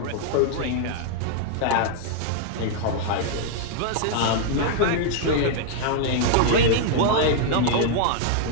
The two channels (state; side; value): different; both; correlation -0.01